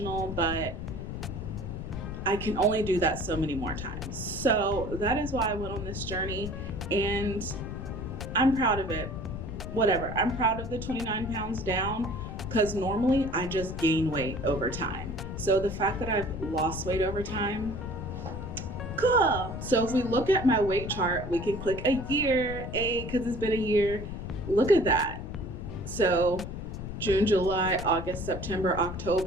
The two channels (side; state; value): left; noise; rumble, 7 dB below the sound